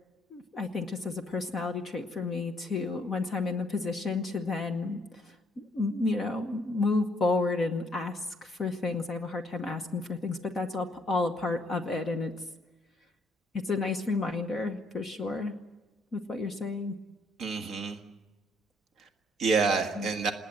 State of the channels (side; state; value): both; normal; correlation 0.67